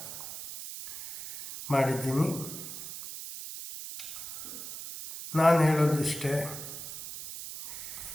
ಮಾಡಿದ್ದೀನಿ. ನಾನು ಹೇಳೋದಿಷ್ಟೇ,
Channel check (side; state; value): right; noise; hiss, 10 dB below the sound